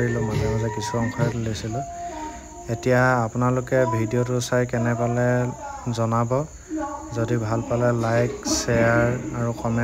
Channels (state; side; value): identical; both; correlation 1.00